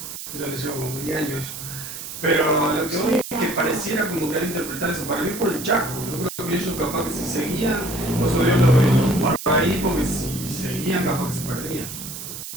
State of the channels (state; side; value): noise; right; hiss, 9 dB below the sound